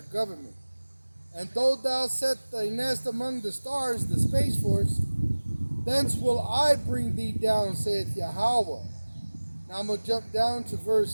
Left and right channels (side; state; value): both; inverted; correlation -1.00